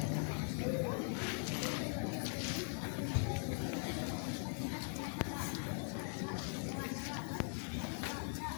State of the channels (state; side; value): silent; right; 50 dB below the other